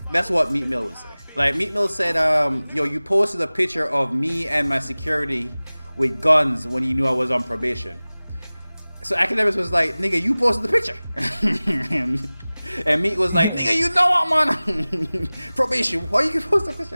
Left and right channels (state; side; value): inverted; both; correlation -0.99